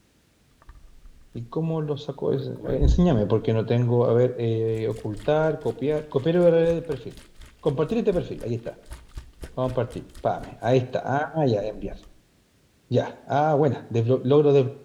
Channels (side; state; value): both; identical; correlation 1.00